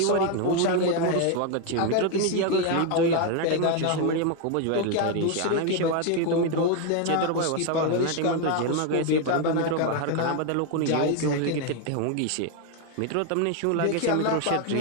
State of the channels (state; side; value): different; both; correlation 0.01